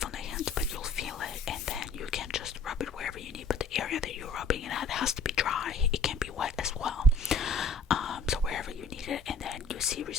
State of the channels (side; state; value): right; quieter; 3.5 dB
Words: on the hands, but you'll feel it, and then you can just rub it wherever you need, but the area that you're rubbing it at has to be dry. It can be wet as well, so wherever you need it, and then you see